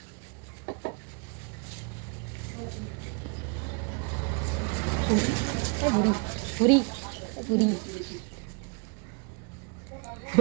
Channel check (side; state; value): left; quieter; 34.7 dB